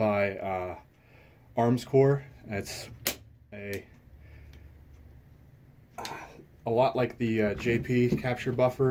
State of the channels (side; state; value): both; identical; correlation 1.00